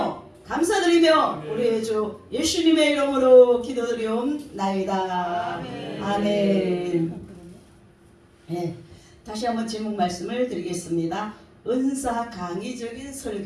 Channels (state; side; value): identical; both; correlation 1.00